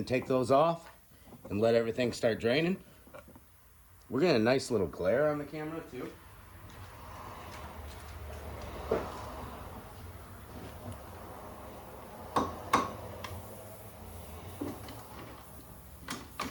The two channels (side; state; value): both; identical; correlation 1.00